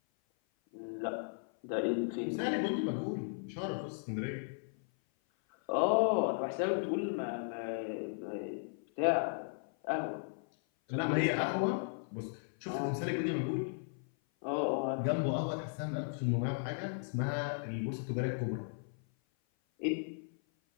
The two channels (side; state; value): right; silent; 54 dB below the other